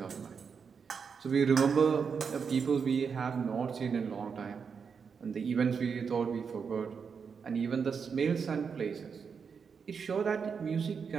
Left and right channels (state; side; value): quieter; left; 6.1 dB